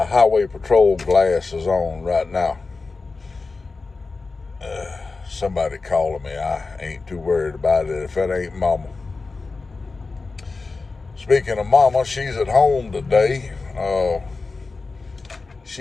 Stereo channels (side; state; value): right; quieter; 4.0 dB